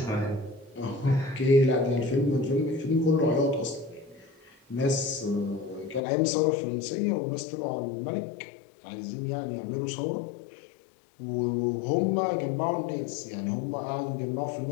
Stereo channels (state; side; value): drops out; right; at 6.0 s